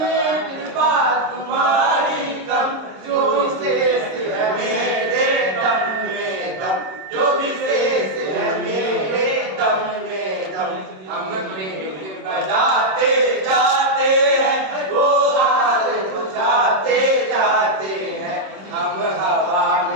कृपा तुम्हारी कम, जो विशेष है मेरे दम में दम, जो विशेष है मेरे दम में दम। हम पेट बजाते जाते हैं, वो हाल बुझाते जाते हैं। हम हवा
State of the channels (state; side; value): late; left; 26 ms